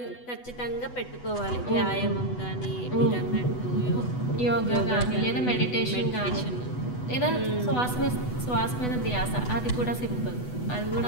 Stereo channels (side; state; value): right; late; 8.1 ms